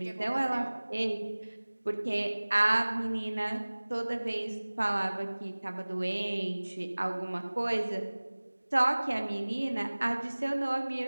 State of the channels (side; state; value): both; inverted; correlation -1.00